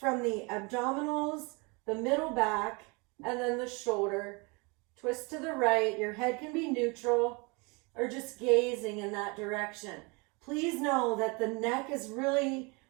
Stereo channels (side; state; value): left; quieter; 29.3 dB